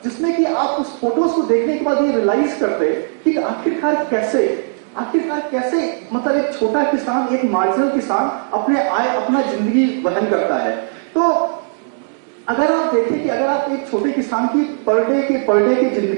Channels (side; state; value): left; silent; digital silence